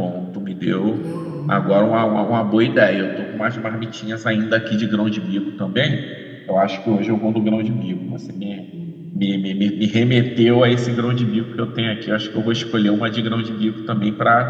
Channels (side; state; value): both; identical; correlation 1.00